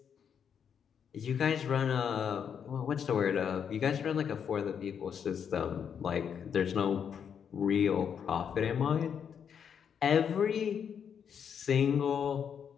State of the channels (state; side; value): quieter; right; 7.7 dB